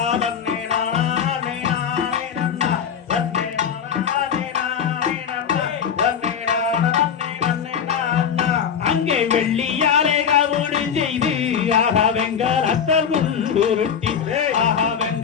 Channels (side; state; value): right; quieter; 7.7 dB